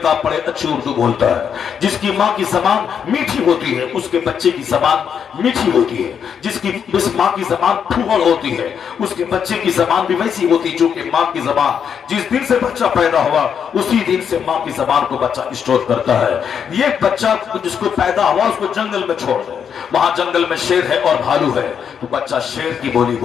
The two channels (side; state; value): right; quieter; 7.6 dB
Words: पढ़े अच्छी उर्दू बोलता है। जिसकी माँ की जबान मीठी होती है, उसके बच्चे की जबान मीठी होती है। जिसकी माँ की जबान फूहड़ होती है, उसके बच्चे की जबान भी वैसी होती जो कि माँ की जबान। जिस दिन से बच्चा पैदा हुआ उसी दिन से माँ की जबान को बच्चा स्टोर करता है। ये बच्चा जिसको पैदा हुआ उसको जंगल में छोड़ दे, वहां जंगल में शेर है और भालू है, तो बच्चा शेर की बोली